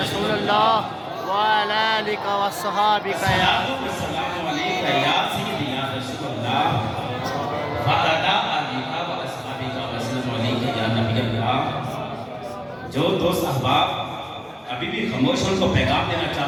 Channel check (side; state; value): both; identical; correlation 1.00